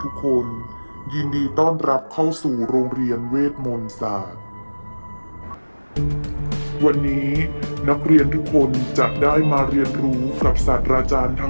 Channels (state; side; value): inverted; both; correlation -1.00